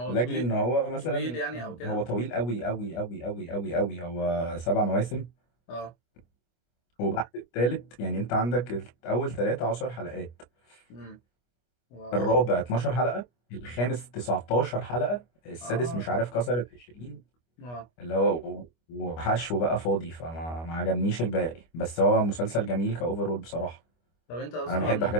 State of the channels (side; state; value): right; late; 25 ms